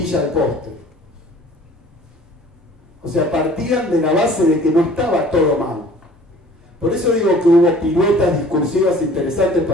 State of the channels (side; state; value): both; normal; correlation 0.50